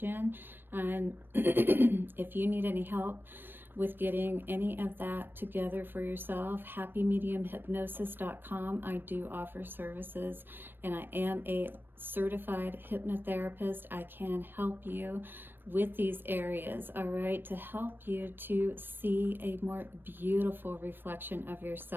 in. And if you need any help with getting any of that together for yourself, happymediumhypnosis.com. I do offer services, and I am a certified hypnotherapist. I can help you with these areas, all right, to help you to see a more beautiful reflection of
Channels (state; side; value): late; left; 0.096 ms